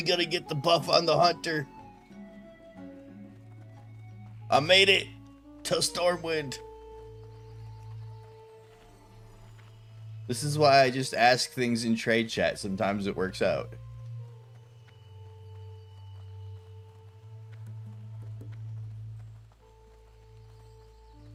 gotta get the buff on the hunter. I made it to Stormwind. This is why I just ask things in trade chat. Sometimes it works out.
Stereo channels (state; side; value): identical; both; correlation 1.00